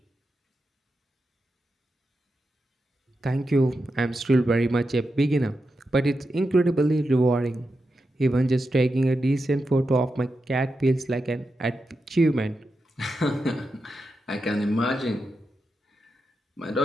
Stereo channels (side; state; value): both; normal; correlation 0.88